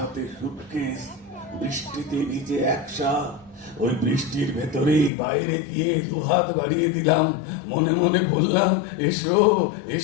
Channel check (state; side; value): drops out; right; at 5.1 s